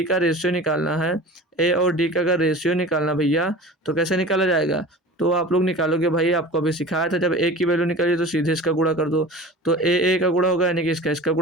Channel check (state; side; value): normal; both; correlation 0.37